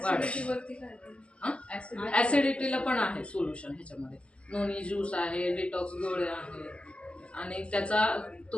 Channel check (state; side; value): late; right; 0.059 ms